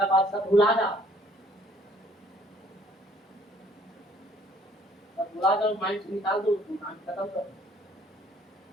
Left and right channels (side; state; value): both; normal; correlation 0.59